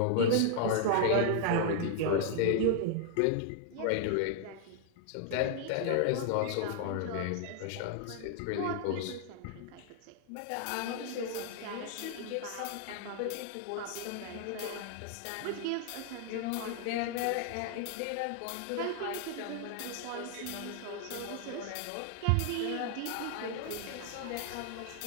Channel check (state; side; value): different; both; correlation 0.00